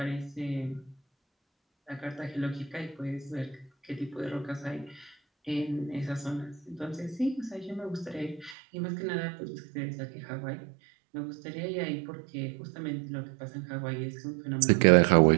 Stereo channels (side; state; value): left; drops out; at 8.6 s